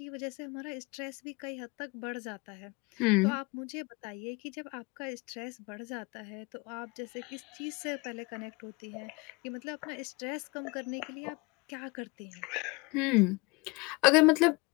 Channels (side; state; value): right; quieter; 26.7 dB